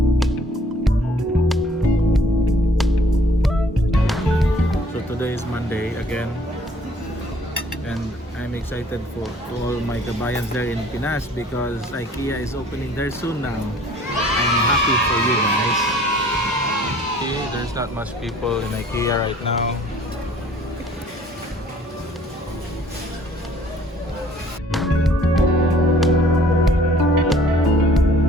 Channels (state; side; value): normal; both; correlation 0.56